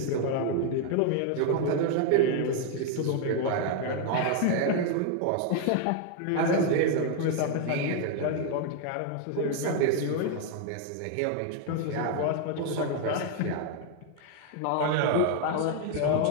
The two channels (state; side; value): different; both; correlation 0.01